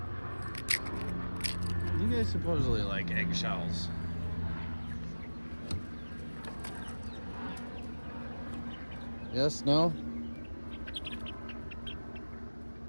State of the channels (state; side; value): inverted; both; correlation -1.00